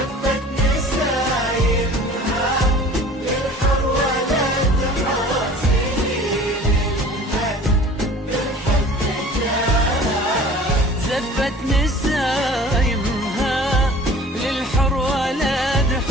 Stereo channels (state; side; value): normal; both; correlation 0.45